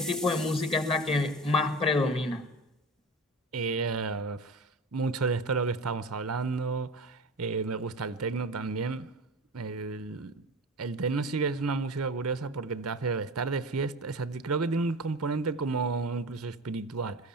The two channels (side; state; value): both; normal; correlation 0.32